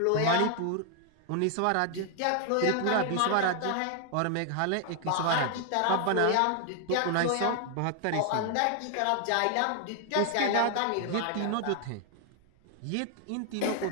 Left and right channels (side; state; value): both; different; correlation 0.00